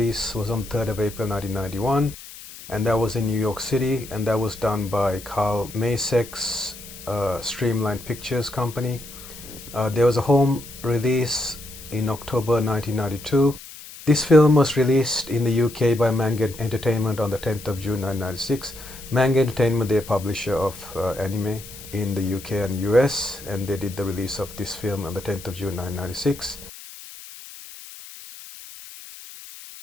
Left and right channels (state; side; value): noise; left; hiss, 16 dB below the sound